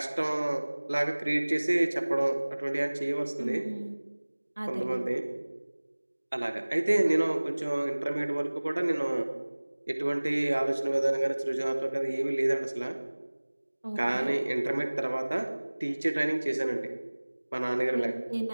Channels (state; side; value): inverted; both; correlation -1.00